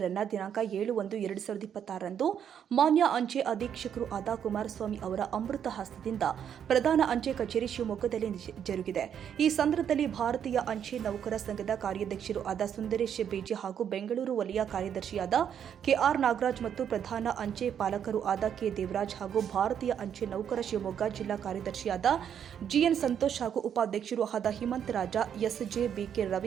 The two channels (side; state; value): left; quieter; 8.7 dB